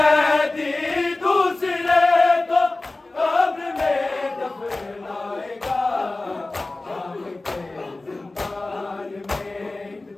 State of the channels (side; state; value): right; quieter; 3.1 dB